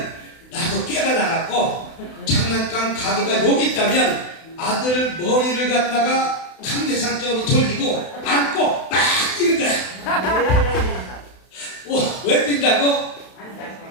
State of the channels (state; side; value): late; right; 32 ms